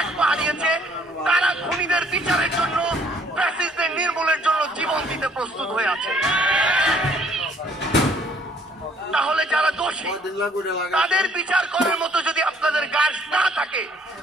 1 পা হারিয়েছে, তারা খুনিদের বিচারের জন্য, ফ্যাসিস্টদের নির্মূলের জন্য জীবন দিতে প্রস্তুত হয়ে আছে। তাহলে যারা দোষী, তাদের বিচার করার মতো যদি আপনাদের গার্ডস না থাকে,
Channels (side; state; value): both; normal; correlation 0.62